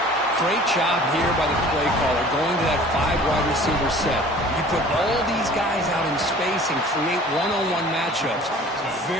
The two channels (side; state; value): both; normal; correlation 0.47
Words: Great job here by the play caller going to that 5-wide receiver set. You put all these guys out in space and create one-on-one matchups.